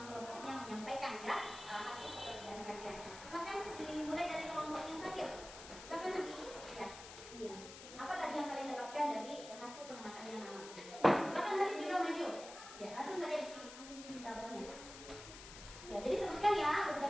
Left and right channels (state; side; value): noise; left; hiss, 13 dB below the sound